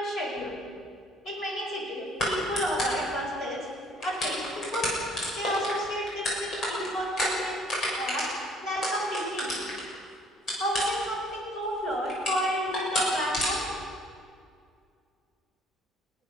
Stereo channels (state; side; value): normal; both; correlation 0.58